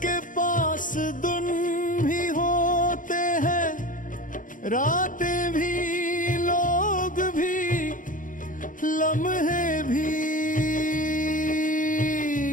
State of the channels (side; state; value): right; late; 0.38 ms